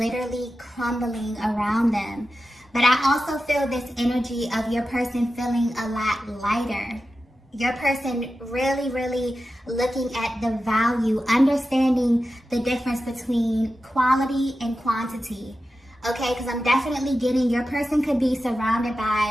crumbling around them. But I also feel this energy of your person feeling a lot lighter. Your person really, really looking at the value, understanding the difference between quality and quantity. Okay, because I'm definitely getting your person could be surrounded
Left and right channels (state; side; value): normal; both; correlation 0.92